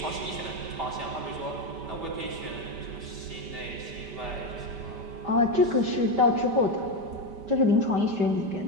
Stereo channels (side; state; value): left; late; 5.1 ms